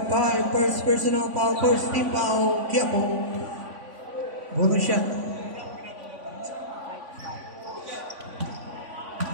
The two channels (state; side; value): late; left; 3.5 ms